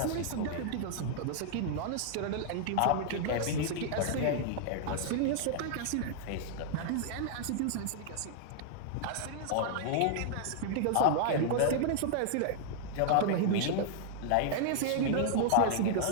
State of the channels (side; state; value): both; different; correlation -0.01